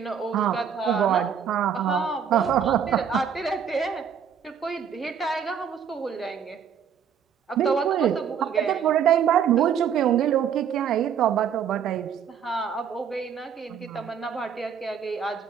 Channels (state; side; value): quieter; left; 7.8 dB